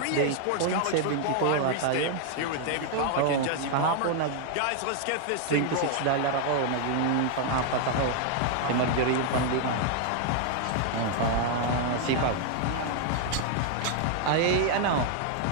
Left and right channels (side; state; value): both; different; correlation 0.00